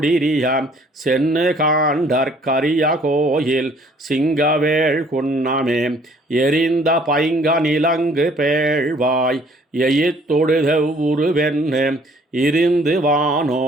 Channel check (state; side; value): normal; both; correlation 0.58